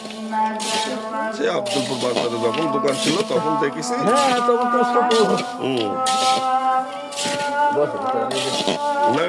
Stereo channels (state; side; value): identical; both; correlation 1.00